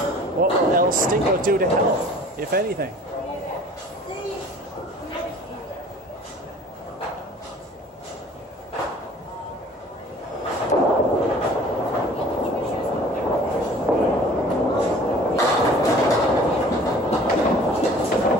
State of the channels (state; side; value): normal; both; correlation 0.48